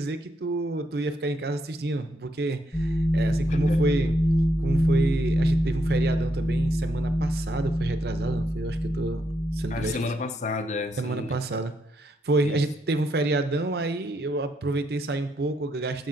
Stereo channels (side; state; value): both; normal; correlation 0.78